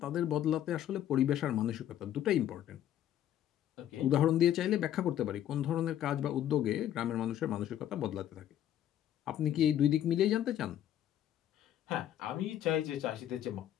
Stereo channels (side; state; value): right; quieter; 11.3 dB